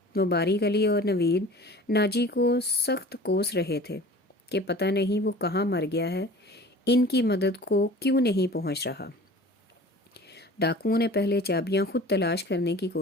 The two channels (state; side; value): normal; both; correlation 0.43